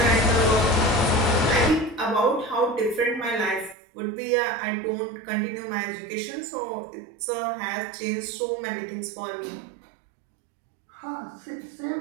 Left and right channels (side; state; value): left; drops out; at 3.8 s